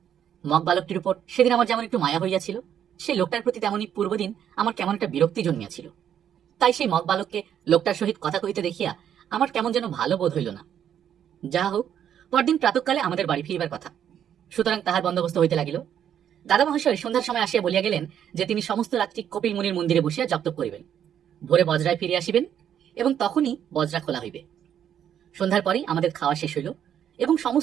মগ বালকটির উপর সেদিন আমার যেমন একটু মায়া হইয়াছিল, সেই লোকটার প্রতি তেমনি পূর্বদিন আমার কেমন একটা বিরক্তি জন্মিয়াছিল। তাই সেই মগ বালককে লোকটার সহিত কথা কহিতে দেখিয়া আমার কেমন যেন ভালো বোধ হইল না। যাহা হোক, পরদিন প্রাতঃকালে আমাদের বাড়ি ফিরিবার কথা, সুতরাং তাহার বন্দোবস্ত হইতে লাগিল। দাদা মহাশয় সন্ধ্যার সময় আসিয়া বলিয়া গেলেন যে তিনি সমস্ত রাত্রি কপিল মুনির মন্দিরে বসিয়া জপ করিবেন, ভোরে বজরায় ফিরে আসিবেন এবং তখনই বজরা খোলা হইবে। সন্ধ্যার পরেই আমাদের খাওয়া শেষ হইল এবং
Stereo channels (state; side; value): quieter; left; 9.5 dB